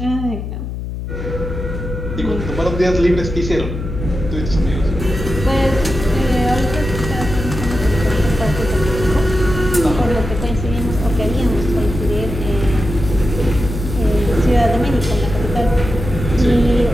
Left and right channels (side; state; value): left; noise; hum, 6 dB below the sound